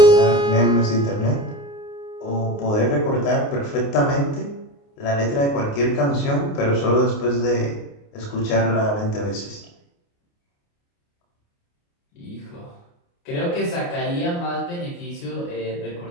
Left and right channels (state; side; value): late; right; 29 ms